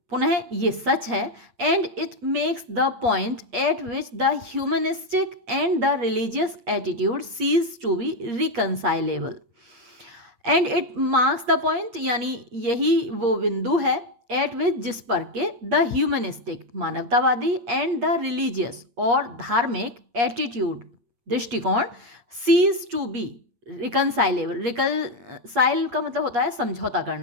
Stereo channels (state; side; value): late; left; 8.5 ms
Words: पुनः ये सच है, and it makes the point at which the humanistic and the religious attitude cease to be reconcilable, and it marks the point, यानी यही वो बिंदु है, एट विच, जिस पर के द ह्यूमनिस्टिक, मानवतावादी, एंड द रिलीजियस, और धार्मिक, एटीट्यूड, दृष्टिकोण, सीज टू बी रिकनसाइलेबल, रिकनसाइल का मतलब होता है समझौता